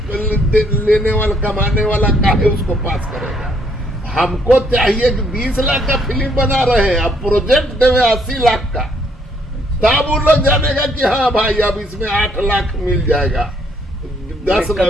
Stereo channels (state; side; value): normal; both; correlation 0.68